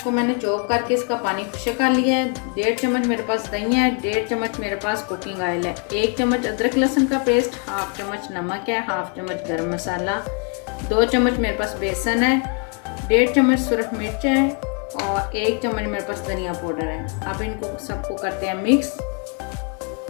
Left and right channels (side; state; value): right; quieter; 39.8 dB